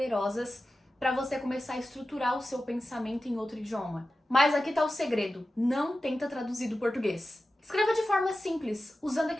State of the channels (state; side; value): normal; both; correlation 0.94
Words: para você começar a estruturar o seu pensamento em outro idioma. Mas aqui tá o segredo, não tenta traduzir do português. Escreva de forma simples, usando